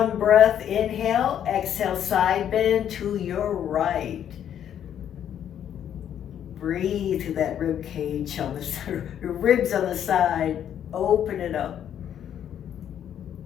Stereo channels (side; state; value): right; quieter; 9.7 dB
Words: breath. Inhale, exhale, side bend to your right. Breathe through that rib cage on the ribs on the side. Open it up.